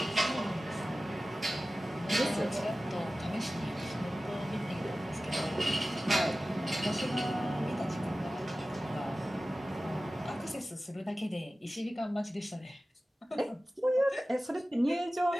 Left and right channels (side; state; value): both; normal; correlation 0.96